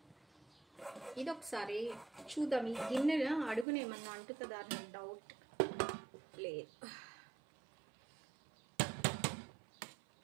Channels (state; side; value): drops out; left; at 3.7 s